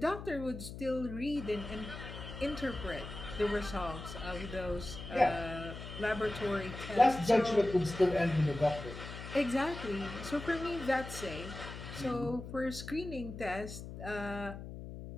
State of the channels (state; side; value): noise; left; hum, 10 dB below the sound